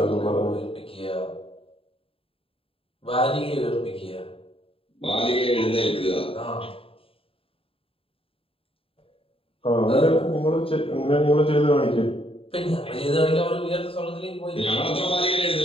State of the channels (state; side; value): late; right; 0.27 ms